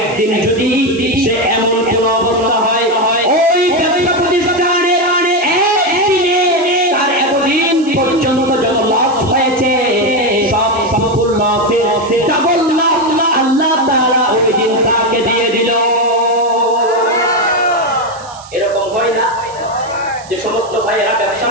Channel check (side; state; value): right; noise; hiss, 20 dB below the sound